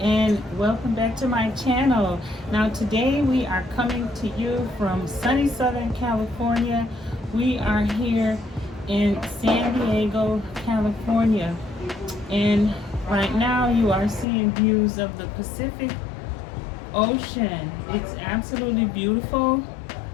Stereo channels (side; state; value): right; drops out; at 14.2 s